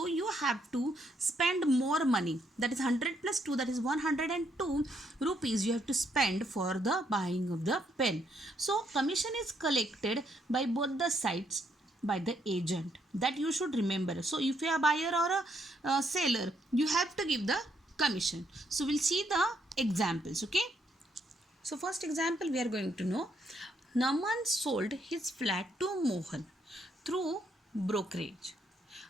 you have to spend more money. That is 100 plus 2, that is 102 rupees you have to spend for the buying of the pen. So commission is collected by both the sides by the agent. That you should remember. So if you are a buyer or a seller, you have to give the commission. So we'll see the examples. Okay. So first example we are going to know. Naman sold his flat to Mohan through brokerage.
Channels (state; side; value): normal; both; correlation 0.74